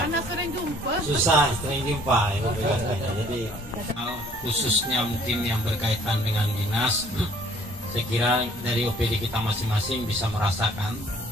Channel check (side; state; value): both; normal; correlation 0.57